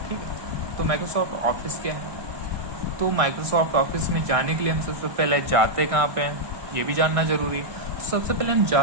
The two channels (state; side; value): late; left; 1.6 ms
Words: ठीक है, तो माइक्रोसॉफ्ट ऑफिस क्या है। तो माइक्रोसॉफ्ट ऑफिस में जाने के लिए हम सबसे पहले जाते कहाँ पे हैं, ये भी जानना जरूरी है। तो सबसे पहले हम